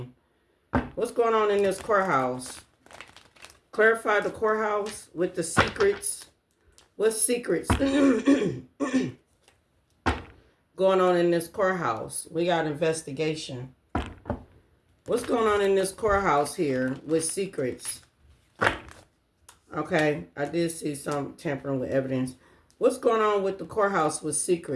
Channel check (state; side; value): identical; both; correlation 1.00